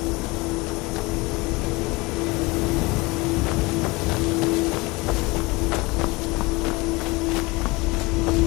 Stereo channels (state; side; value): quieter; right; 24.1 dB